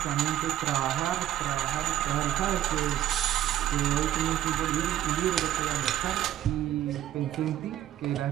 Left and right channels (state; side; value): quieter; left; 12.3 dB